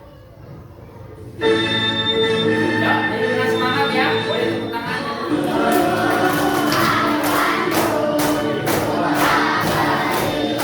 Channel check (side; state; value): both; identical; correlation 1.00